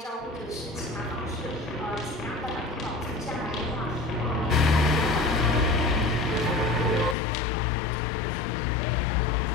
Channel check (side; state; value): right; drops out; at 7.2 s